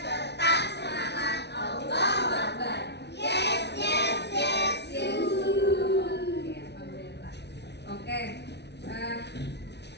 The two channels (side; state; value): right; late; 0.50 ms